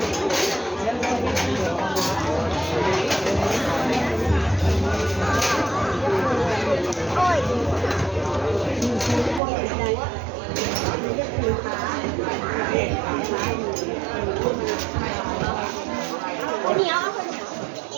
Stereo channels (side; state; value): left; drops out; at 9.4 s